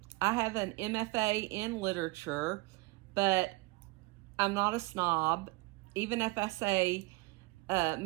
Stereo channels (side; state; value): left; quieter; 23.7 dB